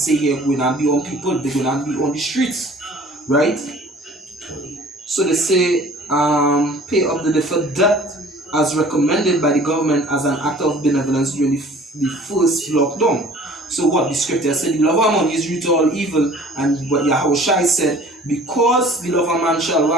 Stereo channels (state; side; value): normal; both; correlation 0.49